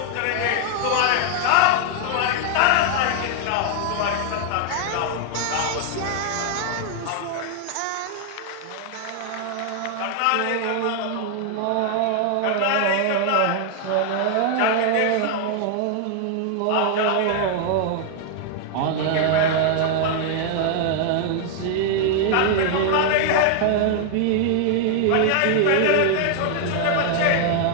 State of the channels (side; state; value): both; different; correlation 0.00